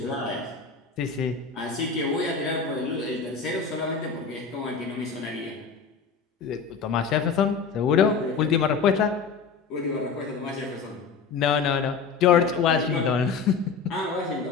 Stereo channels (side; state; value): right; quieter; 5.5 dB